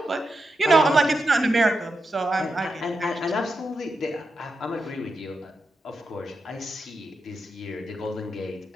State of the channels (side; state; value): both; normal; correlation 0.87